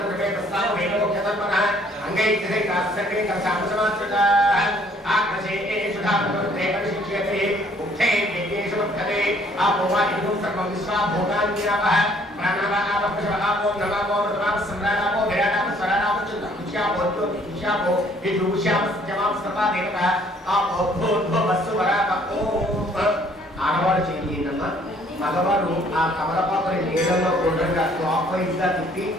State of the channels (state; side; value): normal; both; correlation 0.61